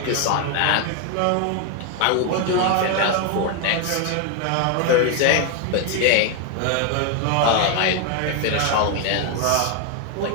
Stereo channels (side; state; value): both; different; correlation 0.01